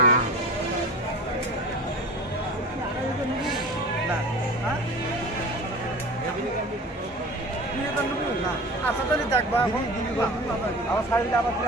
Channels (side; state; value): both; normal; correlation 0.36